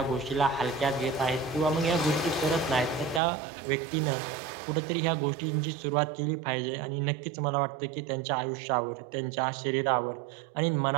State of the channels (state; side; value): drops out; left; at 3.2 s